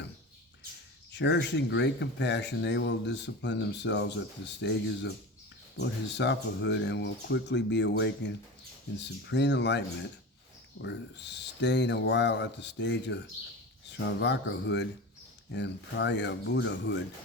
Cherishing great compassion, they will discipline themselves at the stages of bodhisattvahood and will quickly be awakened in supreme enlightenment, or staying a while at the stage of Sravakahood and Praya-Buddhahood.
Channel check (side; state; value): both; normal; correlation 0.29